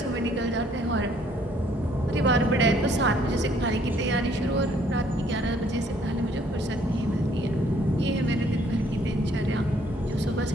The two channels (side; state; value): both; normal; correlation 0.63